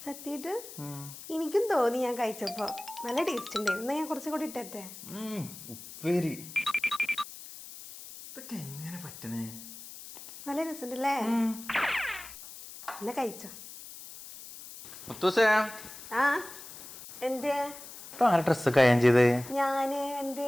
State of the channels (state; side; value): noise; left; hiss, 14 dB below the sound